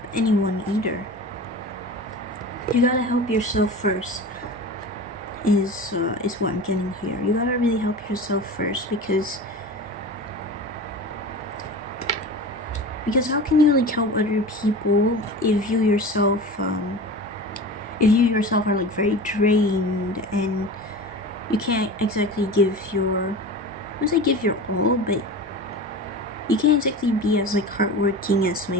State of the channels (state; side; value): normal; both; correlation 0.33